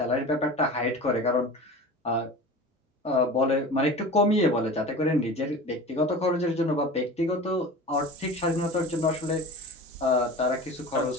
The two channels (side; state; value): both; normal; correlation 0.35